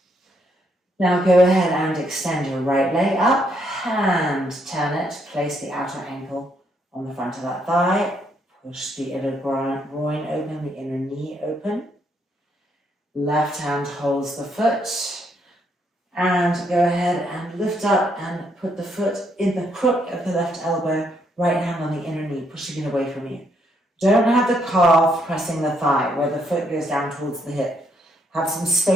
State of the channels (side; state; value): both; normal; correlation 0.73